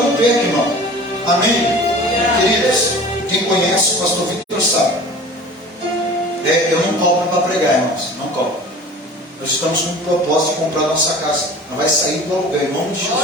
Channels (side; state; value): both; normal; correlation 0.42